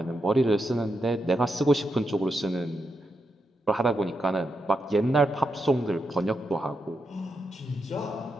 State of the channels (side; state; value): both; normal; correlation 0.84